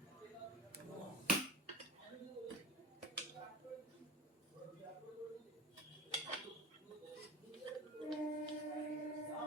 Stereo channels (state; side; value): normal; both; correlation 0.31